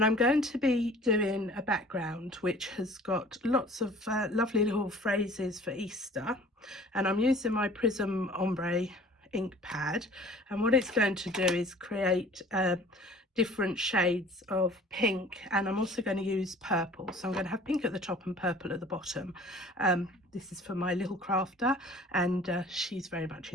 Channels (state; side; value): normal; both; correlation 0.48